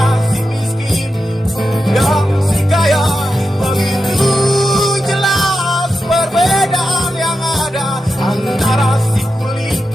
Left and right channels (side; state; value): both; normal; correlation 0.89